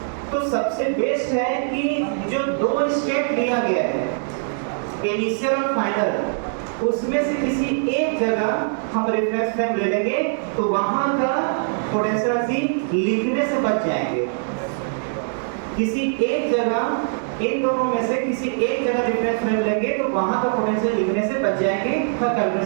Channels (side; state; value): left; silent; digital silence